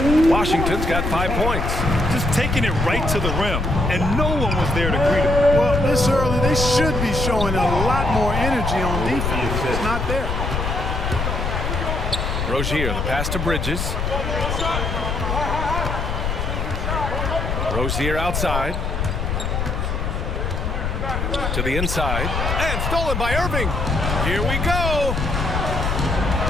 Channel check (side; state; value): left; noise; rumble, 2 dB below the sound